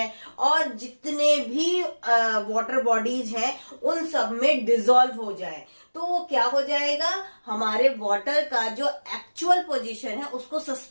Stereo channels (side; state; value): both; inverted; correlation -1.00